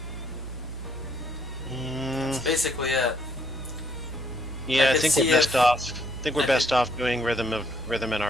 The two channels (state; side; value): normal; both; correlation 0.69